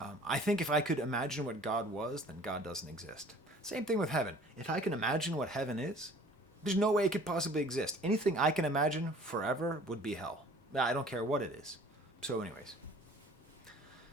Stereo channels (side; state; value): both; normal; correlation 0.51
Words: I think if I could imagine what God was, then God doesn't exist. Same thing with heaven. If I can imagine what heaven is, there's no way it could possibly exist. Anything I can imagine forever would be hell. I don't care what it is. So anyways,